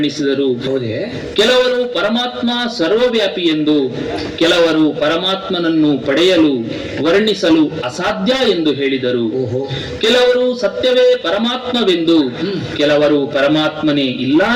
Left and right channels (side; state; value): both; identical; correlation 1.00